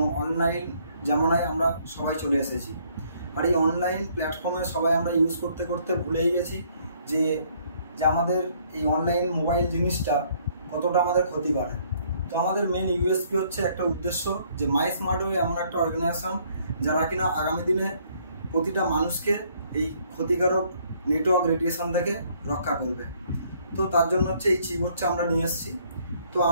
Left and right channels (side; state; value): both; inverted; correlation -0.65